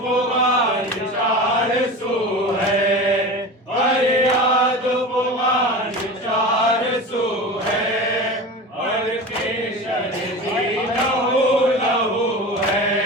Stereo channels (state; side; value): normal; both; correlation 0.30